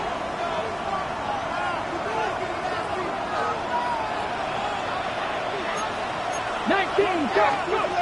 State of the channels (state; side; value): identical; both; correlation 1.00